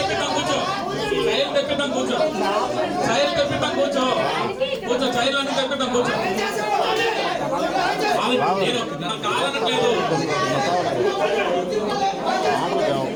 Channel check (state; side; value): identical; both; correlation 1.00